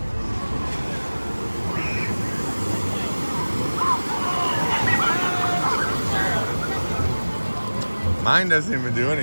Mine doesn't even do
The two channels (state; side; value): inverted; both; correlation -1.00